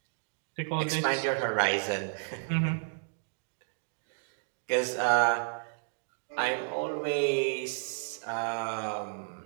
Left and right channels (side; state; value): left; silent; digital silence